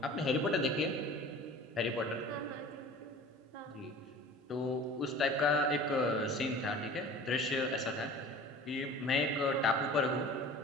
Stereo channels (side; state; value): both; normal; correlation 0.42